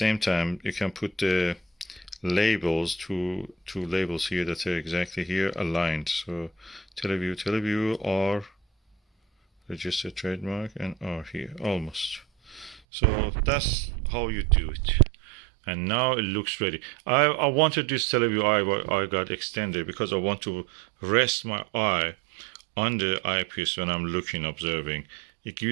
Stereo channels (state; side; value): drops out; left; at 12.8 s